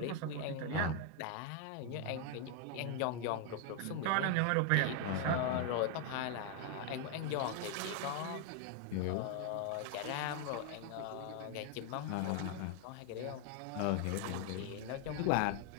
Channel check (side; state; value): both; different; correlation 0.01